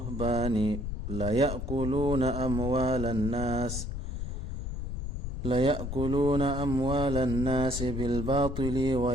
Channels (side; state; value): left; noise; rumble, 4 dB below the sound